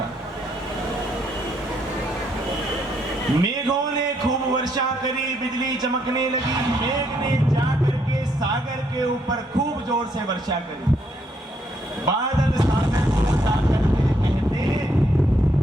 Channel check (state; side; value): normal; both; correlation 0.73